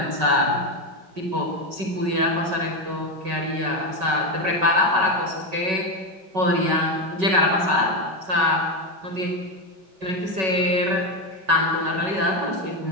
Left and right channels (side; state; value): left; late; 5.3 ms